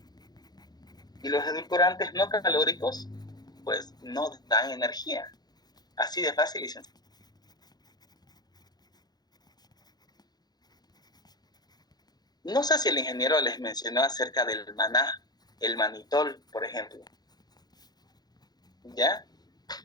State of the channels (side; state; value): right; late; 0.19 ms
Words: y los edulcorantes no calóricos pues no dan energía. Así de fácil y sencillo. No sé si el ingeniero les mencionó acerca del maná, el manitol, por ejemplo. ¿Ya?